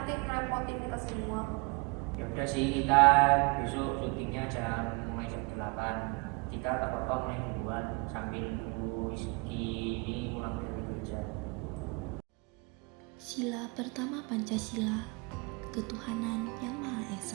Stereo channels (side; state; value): left; quieter; 29.9 dB